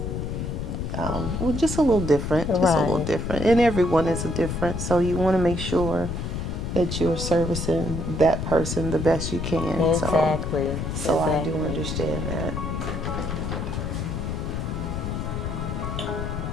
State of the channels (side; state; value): left; noise; rumble, 3 dB below the sound